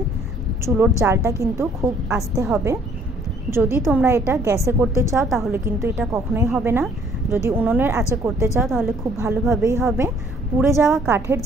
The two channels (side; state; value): both; normal; correlation 0.61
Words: চুলোর জালটা কিন্তু খুব আস্তে হবে। যদি তোমরা এটা গ্যাসে করতে চাও তাহলে কিন্তু এটা কখনোই হবে না। যদি উনুনের আঁচে করতে চাও তাহলে খুব ভালোভাবেই হবে। পুড়ে যাওয়া কাঠের